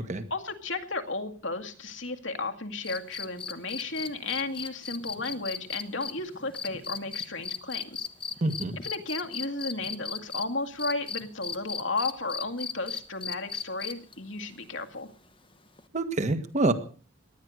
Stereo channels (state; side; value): normal; both; correlation 0.07